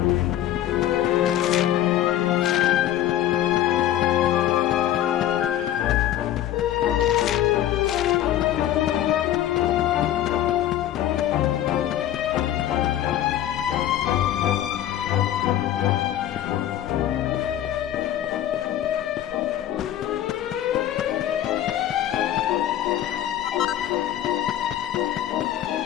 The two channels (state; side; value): quieter; right; 12.2 dB